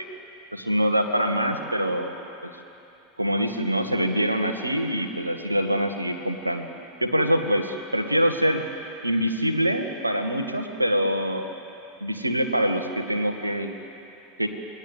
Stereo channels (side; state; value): both; inverted; correlation -0.79